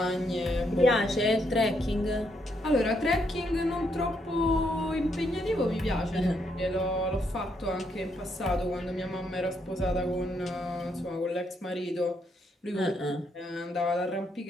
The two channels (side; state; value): both; normal; correlation 0.76